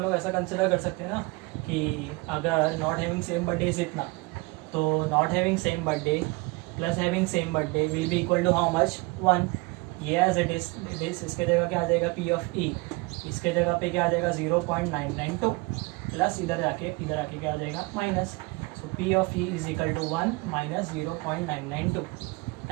लोग ऐसा कंसिडर कर सकते हैं ना कि अगर not having same birthday is इतना, तो not having same birthday plus having same birthday will be equal to how much 1. ये एज इट इज इसके जगह क्या आ जाएगा पी ऑफ ई, इसके जगह पे क्या आ जाएगा 0.992 प्लस इधर आके क्या आ जाएगा minus. So P of E is equal to 1 minus 0.992.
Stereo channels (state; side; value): quieter; left; 25.4 dB